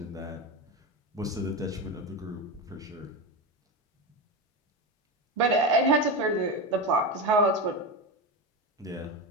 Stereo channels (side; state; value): both; normal; correlation 0.17